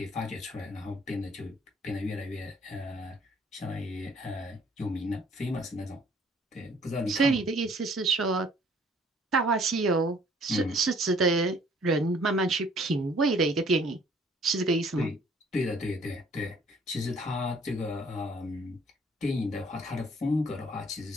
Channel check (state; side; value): normal; both; correlation 0.59